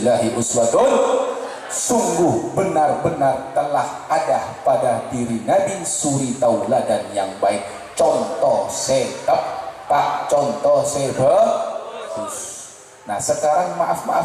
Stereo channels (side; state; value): both; identical; correlation 1.00